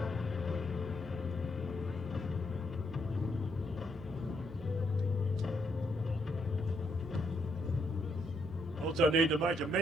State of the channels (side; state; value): both; normal; correlation 0.76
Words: Also need to make a